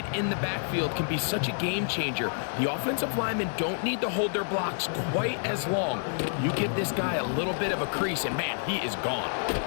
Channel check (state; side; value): silent; right; 59 dB below the other